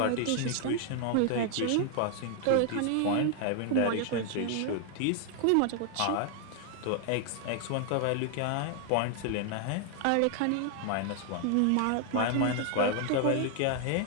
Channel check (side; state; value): both; different; correlation 0.00